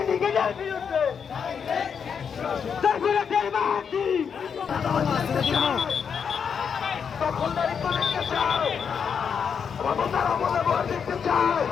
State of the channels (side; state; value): right; quieter; 6.8 dB